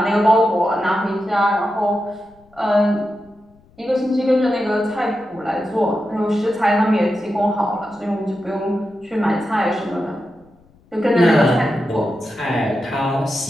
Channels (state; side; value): noise; left; rumble, 30 dB below the sound